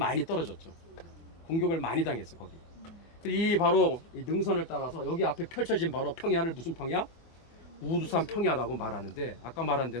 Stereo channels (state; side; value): late; right; 24 ms